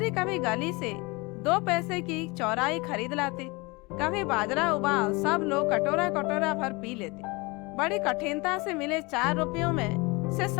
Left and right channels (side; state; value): right; quieter; 25.8 dB